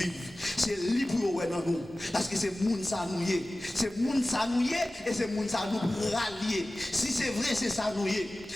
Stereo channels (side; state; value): both; normal; correlation 0.96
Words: C'est libre dans nous. Parce que c'est monde ça nous y est. C'est monde ça nous y est et c'est monde ça nous rallier. Si c'est vrai, c'est ça nous y est.